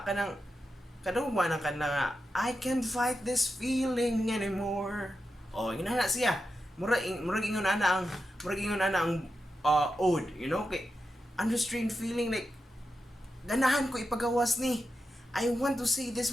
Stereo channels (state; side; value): normal; both; correlation 0.88